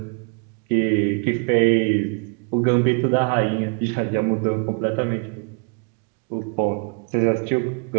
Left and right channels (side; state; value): left; quieter; 39.6 dB